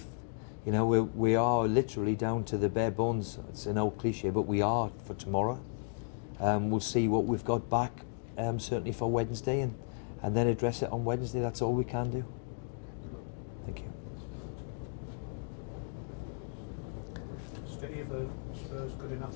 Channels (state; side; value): silent; right; digital silence